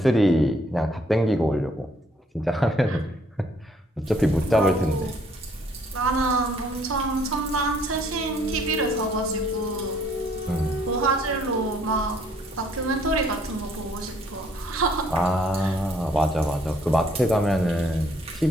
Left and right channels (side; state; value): both; normal; correlation 0.64